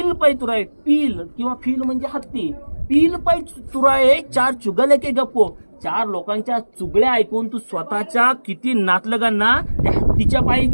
पै तुराय पील किंवा फील म्हणजे हत्ती पील पै तुराय चार चुगले के गप्पो चार लोकांच्या चुगल्या ऐकून तू स्वतःच्या किती नातलगांना त्या हत्तीच्या पायी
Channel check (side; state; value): both; inverted; correlation -1.00